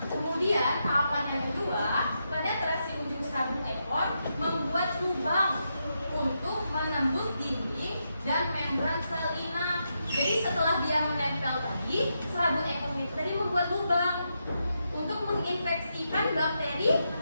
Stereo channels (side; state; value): both; inverted; correlation -0.84